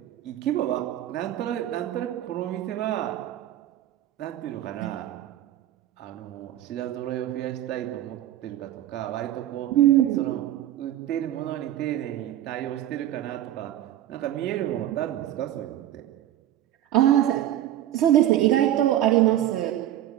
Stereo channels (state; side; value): quieter; left; 12.5 dB